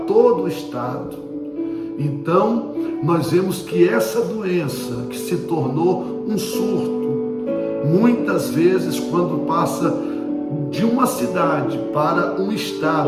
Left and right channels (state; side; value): identical; both; correlation 1.00